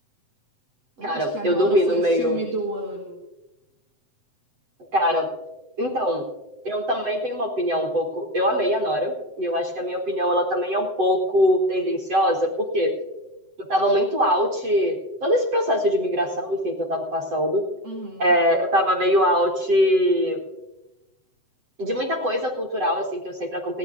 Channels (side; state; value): left; late; 7.8 ms